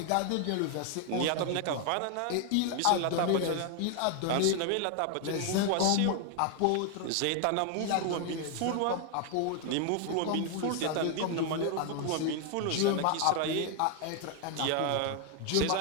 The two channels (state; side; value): different; both; correlation 0.00